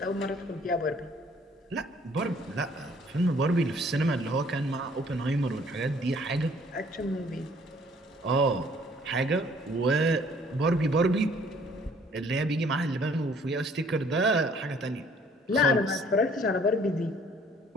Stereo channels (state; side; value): normal; both; correlation 0.59